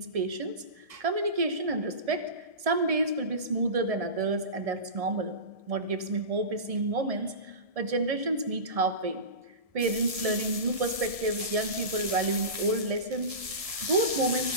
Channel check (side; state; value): left; late; 1.7 ms